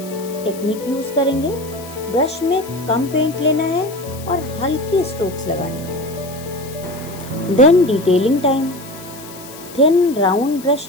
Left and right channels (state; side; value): noise; left; hiss, 17 dB below the sound